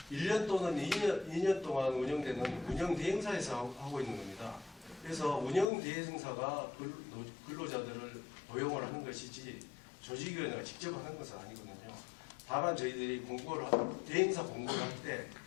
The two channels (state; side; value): drops out; right; at 5.7 s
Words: 1년 또는 2년 동안 운영되는 운영 대행사에서 하고 있는 겁니다. 그래서 운영 대행사가 근로자들을 고용을 하는 것이지 조직위원회가 직접 하는 것은 아니거든요. 다만 저희들이 대행사 공고를 할 때